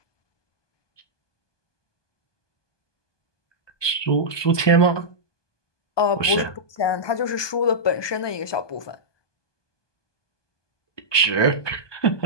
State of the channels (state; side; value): late; right; 1.2 ms